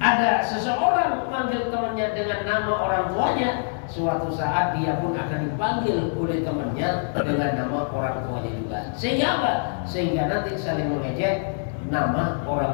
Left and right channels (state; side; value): silent; right; digital silence